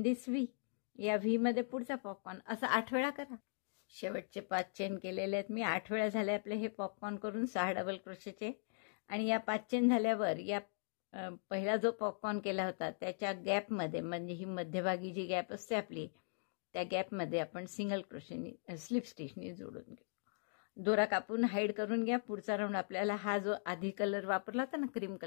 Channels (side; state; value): right; silent; digital silence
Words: this V. या व्हीमध्ये पुढचा पॉपकॉर्न. असं 8 वेळा करा. शेवटचे 5 चेन केलेले आहेत मी. 8 वेळा झाले आपले हे पॉपकॉर्न करून 6 डबल क्रोशेचे. आणि या 5 चेन झाल्यावर या पहिला जो पॉपकॉर्न केला होता त्याच्या गॅपमध्ये, म्हणजे ही मध्यभागी जी गॅप असते आपली, त्या गॅपमध्ये आपण सिंगल क्रोशेनी स्लिप स्टिचनी जोडून घेऊ. दोरा कापून हाईड करून घ्या. पुढचा राऊंड आपल्याला हा जो आधी कलर वापरला होता ना, क्रीम